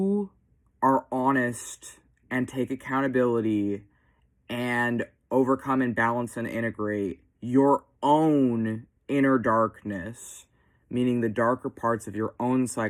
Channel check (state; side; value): identical; both; correlation 1.00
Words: are honest and take accountability and overcome and balance and integrate your own inner darkness, meaning the darker parts of your own